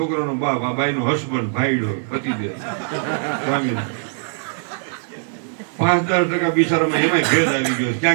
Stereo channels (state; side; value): silent; left; digital silence